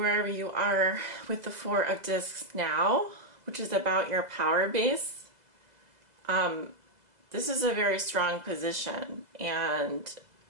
you are with the Four of Discs now, which is about your power base. This is a very strong position, and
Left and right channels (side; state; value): left; late; 2.0 ms